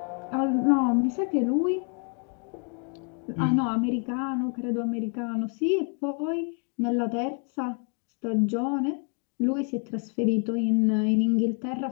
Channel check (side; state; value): right; quieter; 38.5 dB